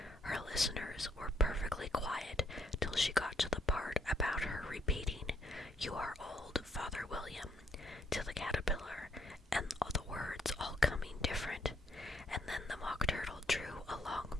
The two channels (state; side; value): normal; both; correlation 0.69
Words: Her listeners were perfectly quiet till she got to the part about her repeating, "You are old, Father William," to the caterpillar, and all the words all coming different. And then the Mock Turtle drew a long